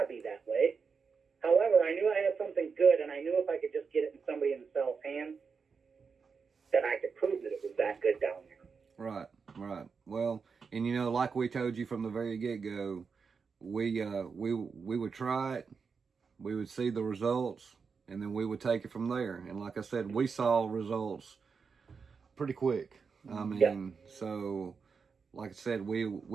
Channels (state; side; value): quieter; left; 5.5 dB